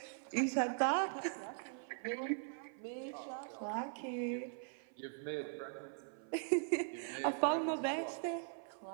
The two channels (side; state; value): left; silent; 51 dB below the other